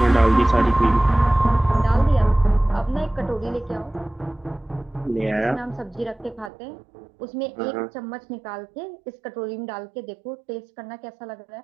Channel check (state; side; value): drops out; left; at 6.5 s